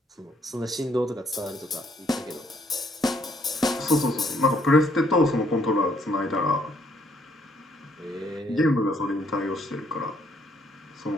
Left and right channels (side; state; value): both; normal; correlation 0.68